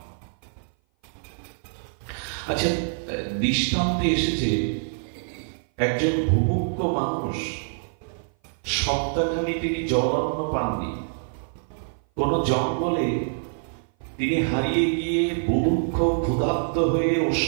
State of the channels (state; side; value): silent; left; 57 dB below the other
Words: আচ্ছা, দৃষ্টান্তে এসেছে একজন ভুভুক্ষ মানুষ, সপ্তাহখানি তিনি জলান্ন পাননি। কোন জঙ্গলে তিনি হারিয়ে গিয়ে বুভুক্ষ ক্ষুধার্ত হয়ে